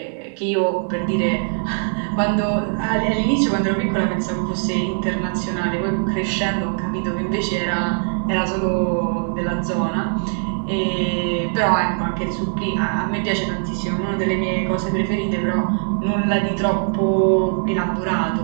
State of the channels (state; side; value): silent; left; 58 dB below the other